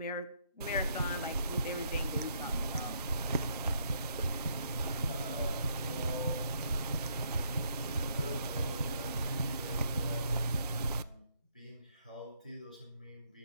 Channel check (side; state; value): both; inverted; correlation -0.71